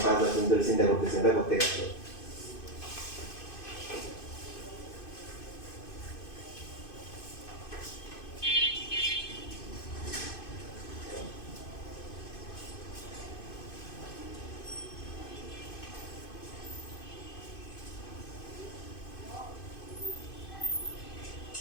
5 দিন ধরে চিন্তা করতেছেন এটা করতে গেছে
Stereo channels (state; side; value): late; right; 2.5 ms